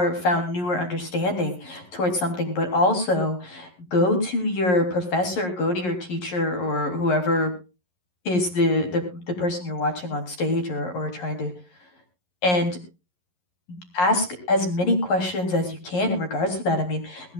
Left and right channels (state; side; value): late; right; 11 ms